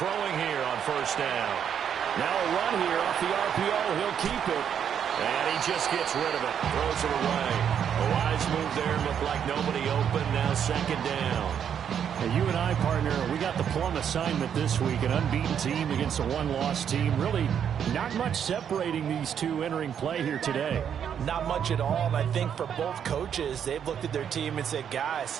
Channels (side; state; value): left; quieter; 8.4 dB